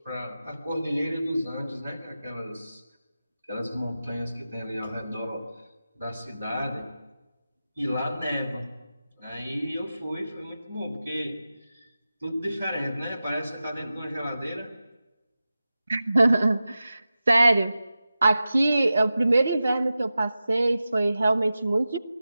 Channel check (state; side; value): inverted; both; correlation -0.94